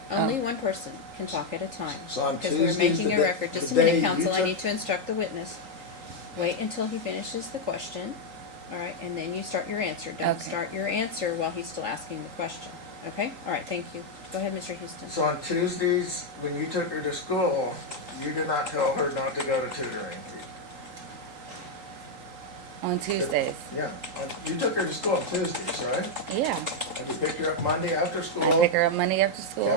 Only one person. can talk at a time. So on Because we're Tuesdays, making the a day- record. Just a the day minute, you counsel, I took- need to instruct the witness. Wait until he finishes the question, alright, and then you start your answer. Don't Okay. start your answer while he's still asking the question, okay? Alright, thank you. Go ahead, Mr. Houston. So on Tuesdays, when you took her to school, you did not tell her not to go to tutoring. On Tuesdays. Yeah, you took her to school on Tuesdays, right? Yeah. And you picked her up Monday after I school, pick her up Monday after school.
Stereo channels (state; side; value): late; left; 3.8 ms